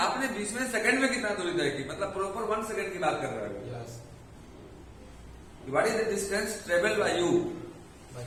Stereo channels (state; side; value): identical; both; correlation 1.00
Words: 20वें सेकंड में कितना दूरी तय की, मतलब प्रॉपर 1 सेकंड की बात कर रहे हो। What is the distance travelled by you